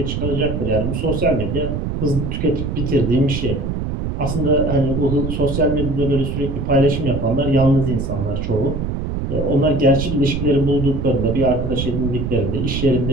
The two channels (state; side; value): noise; right; rumble, 3 dB below the sound